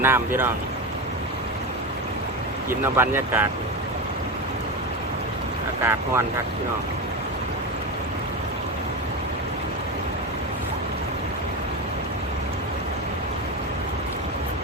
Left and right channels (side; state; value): both; normal; correlation 0.19